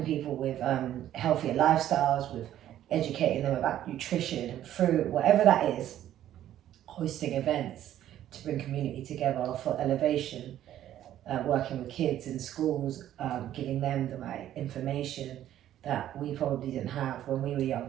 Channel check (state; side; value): quieter; left; 12.0 dB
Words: people with healthier lifestyles, with educating them about nutrition and fruit, whatever that is, hosting events to bring community together for elevation, working with kids in schools, giving them the right information that we probably didn't have when we were